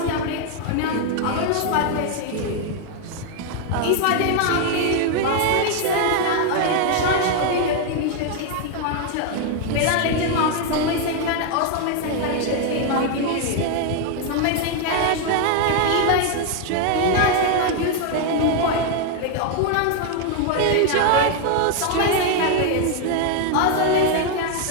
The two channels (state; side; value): different; both; correlation 0.00